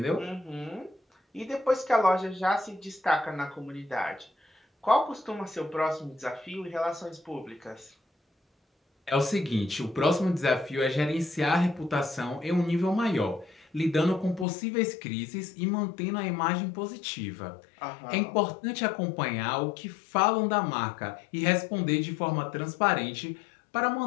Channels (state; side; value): drops out; right; at 14.5 s